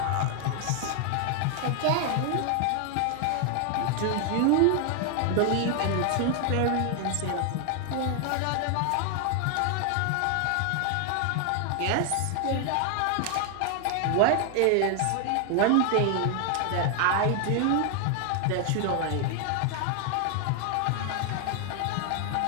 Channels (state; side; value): different; both; correlation 0.00